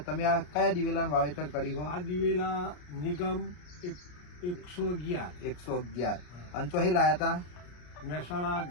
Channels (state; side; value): late; right; 34 ms